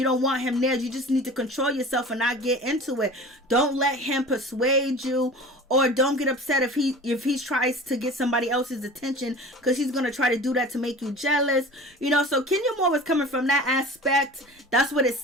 don't want him there. You just need to control yourself and not get into it. Don't let him persuade you, or don't get upset if he tries to get somebody else's attention, because he's going to try to do that to make you jealous. So Kenya Moore was coming from that aspect. That's what it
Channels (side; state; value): both; normal; correlation 0.39